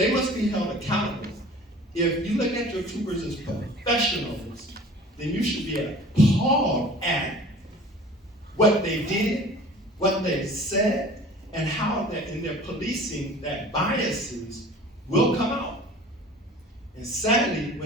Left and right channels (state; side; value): normal; both; correlation 0.45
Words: must be held accountable. If you look at your troopers as professionals, then you should be appalled at what they did, what they said, and how that in their policing, that biases will come out. And sadly,